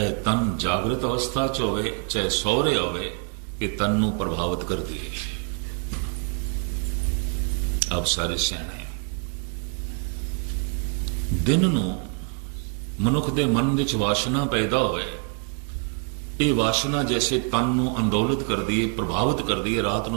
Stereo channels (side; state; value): left; quieter; 38.2 dB